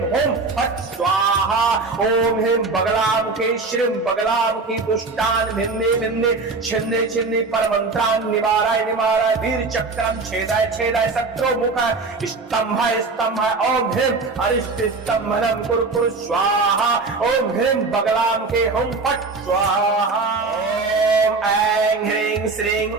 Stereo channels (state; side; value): quieter; left; 3.9 dB